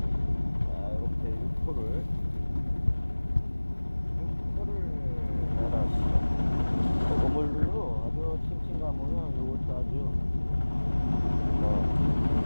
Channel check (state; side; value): inverted; both; correlation -1.00